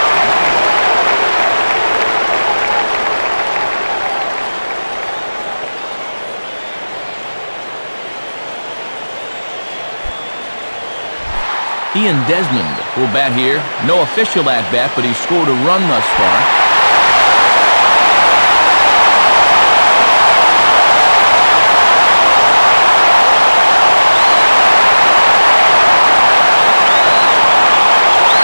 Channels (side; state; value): both; inverted; correlation -1.00